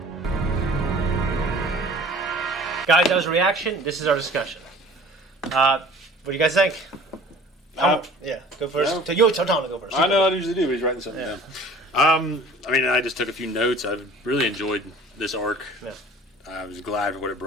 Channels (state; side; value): normal; both; correlation 0.47